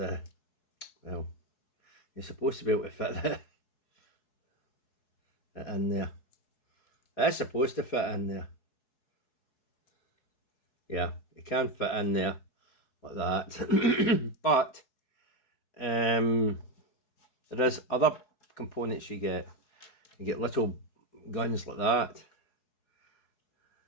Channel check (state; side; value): late; right; 4.7 ms